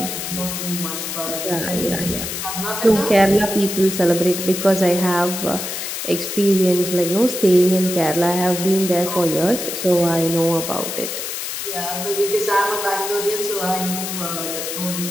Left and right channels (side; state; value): left; noise; hiss, 5 dB below the sound